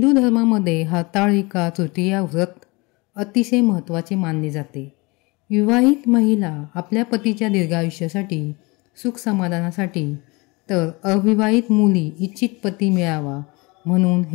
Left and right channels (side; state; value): right; quieter; 25.8 dB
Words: धर्मामध्ये हरताळिका तृतीया व्रत अतिशय महत्त्वाचे मानले जाते. विवाहित महिला आपल्या पतीच्या दीर्घायुष्यासाठी, सुख समाधानासाठी, तर अविवाहित मुली इच्छित पती मिळावा म्हणून